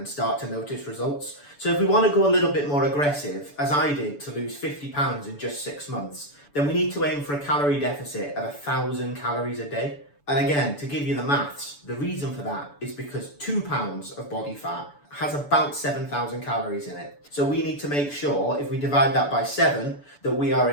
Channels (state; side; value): late; right; 6.9 ms